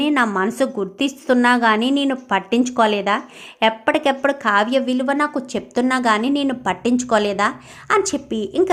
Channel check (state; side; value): identical; both; correlation 1.00